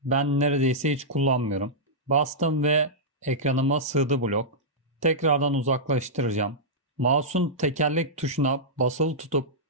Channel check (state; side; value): normal; both; correlation -0.11